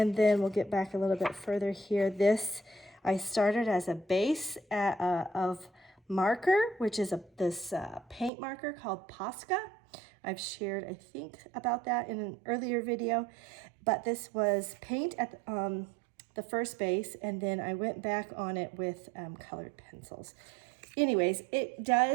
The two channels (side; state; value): left; drops out; at 8.3 s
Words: then we'll get back a little bit further here. This I started as a base of marker, which is this paint marker called Posca. I've shared, I think, about that in an earlier video. But this was paint at the first base, and then I went back on it with colored pencils. Anyways, it